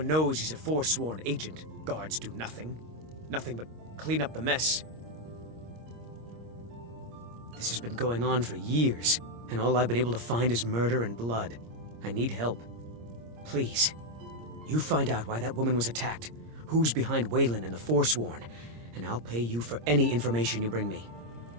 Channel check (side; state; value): left; late; 26 ms